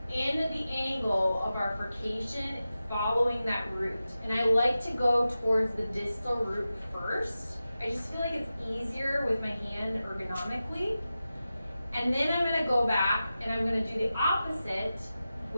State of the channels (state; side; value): inverted; both; correlation -0.93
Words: in the angle of our furcation following that root. And I like to go towards the distal root first. I just feel like it's easier with my hand ergonomically. And then I'm gonna go back and I'm gonna do the opposite